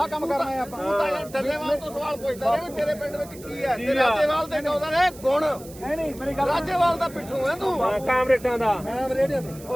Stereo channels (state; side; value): noise; right; hiss, 19 dB below the sound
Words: ਕਰਨਾ ਹੈ ਆਪਾਂ ਤੂੰ ਤਾਂ ਯਾਰ ਡੱਲੇਵਾਲ ਤੋਂ ਸਵਾਲ ਪੁੱਛਦਾ ਰਿਹਾ ਵੀ ਤੇਰੇ ਪਿੰਡ ਵਿੱਚ ਕੀ ਹੈ ਤੇ ਰਾਜੇਵਾਲ ਦੇ ਕਹਿੰਦਾ ਨੇ ਗੁਣ ਨਹੀਂ ਮੇਰੀ ਗੱਲ ਰਾਜੇਵਾਲ ਦਾ ਪਿੱਠੂ ਹੈ ਤੂੰ ਕਾਮਰੇਟਾਂ ਦਾ ਮੈਂ ਰੇਡੀਓ ਤੇ